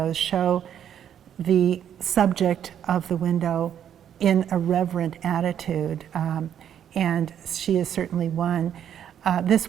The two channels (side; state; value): left; quieter; 9.5 dB